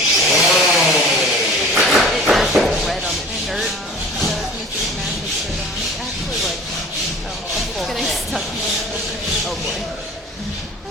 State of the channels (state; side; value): normal; both; correlation 0.43